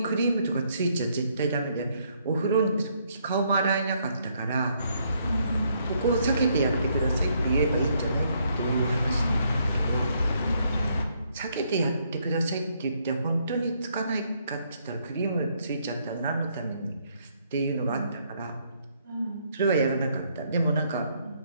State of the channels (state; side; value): inverted; both; correlation -0.71